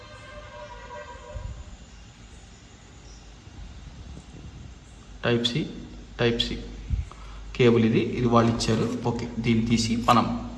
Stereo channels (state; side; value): identical; both; correlation 1.00